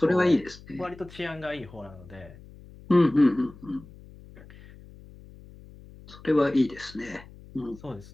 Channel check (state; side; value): noise; left; hum, 20 dB below the sound